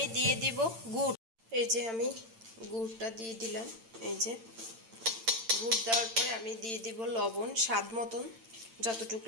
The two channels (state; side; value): late; left; 8.9 ms